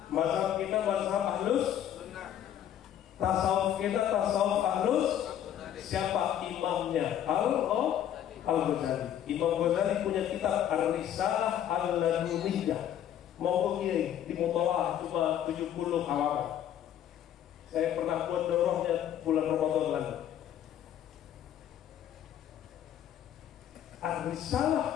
Mazhab kita mazhab ahlus, tasawuf kita tasawuf ahlus. Siapa imamnya? Al-Ghazali. Imam Ghazali punya kitab Ar-Risalah Al-Laduniyah. Mau kiai di Mutawah cuma 70 halaman. Saya pernah buat dorohnya bulan Ramadan lalu.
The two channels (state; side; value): quieter; right; 10.5 dB